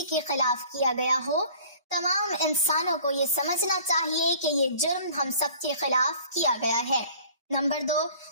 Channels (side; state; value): both; inverted; correlation -0.49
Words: کے خلاف کیا گیا ہو، تمام انسانوں کو یہ سمجھنا چاہیے کہ یہ جرم ہم سب کے خلاف کیا گیا ہے۔ نمبر 2،